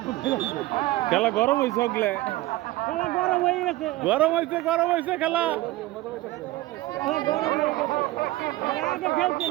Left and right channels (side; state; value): left; quieter; 17.7 dB